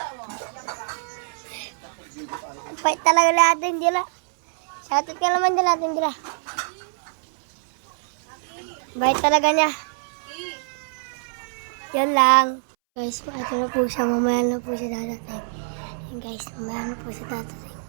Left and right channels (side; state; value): left; silent; 62 dB below the other